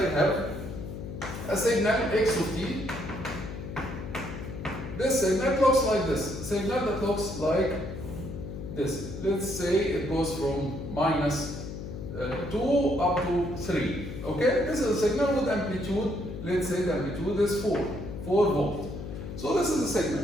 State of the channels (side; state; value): left; noise; hum, 8 dB below the sound